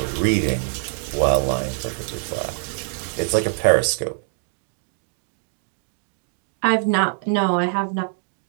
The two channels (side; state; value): left; silent; 56 dB below the other